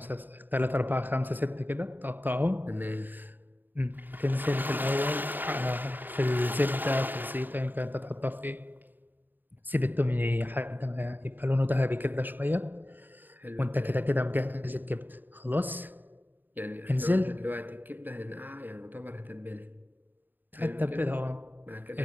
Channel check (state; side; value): late; left; 0.090 ms